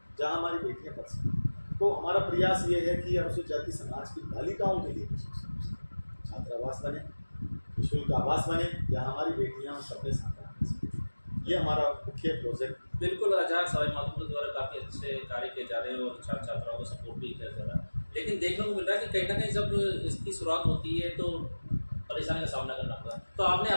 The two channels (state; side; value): inverted; both; correlation -1.00